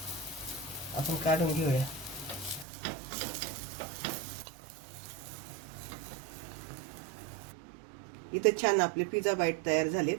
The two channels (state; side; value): drops out; left; at 2.7 s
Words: आपण काढून घेऊया. इथं छान आपले पिझ्झा बाईट तयार झालेत.